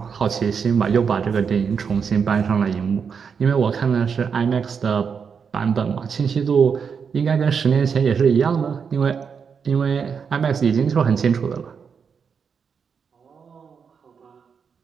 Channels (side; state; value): left; quieter; 6.3 dB